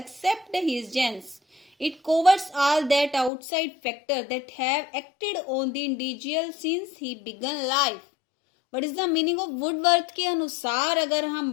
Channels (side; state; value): right; drops out; at 3.3 s